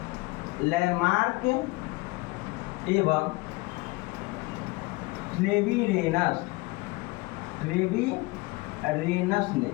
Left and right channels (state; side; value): quieter; right; 23.7 dB